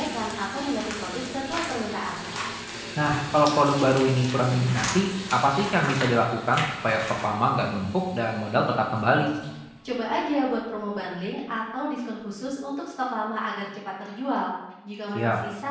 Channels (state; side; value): identical; both; correlation 1.00